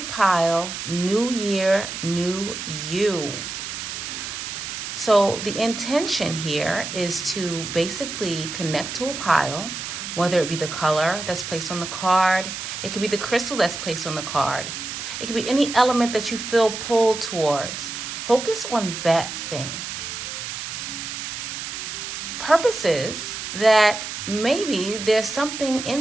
Pile New Year, New You. So, the intention here is to basically connect to a pile, whether it be the color that's placed on the card, it could be the crystal that's placed on the card, it could be any element that you feel pulled towards. Focus on that thing. Purpose is that maybe there's something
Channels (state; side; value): noise; right; hiss, 6 dB below the sound